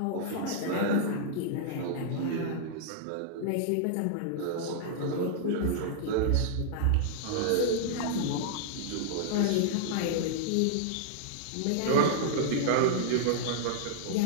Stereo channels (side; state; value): both; different; correlation -0.01